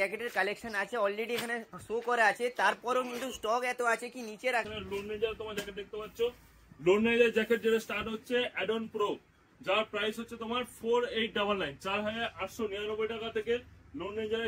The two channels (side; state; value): both; identical; correlation 1.00